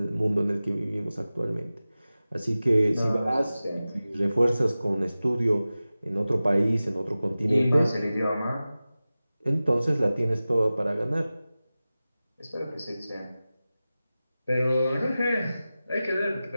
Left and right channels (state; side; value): inverted; both; correlation -0.96